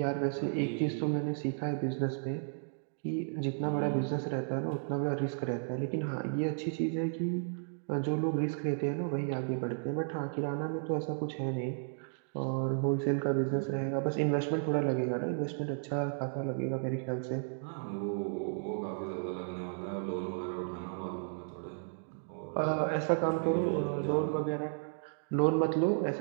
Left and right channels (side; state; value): left; silent; digital silence